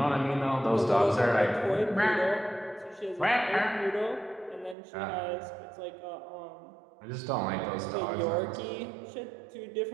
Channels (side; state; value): left; drops out; at 4.8 s